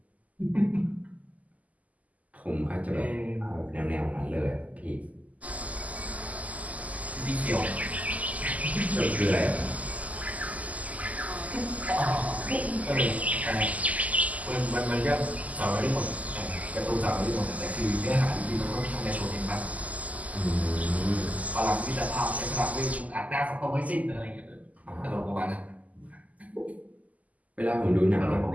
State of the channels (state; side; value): late; left; 0.074 ms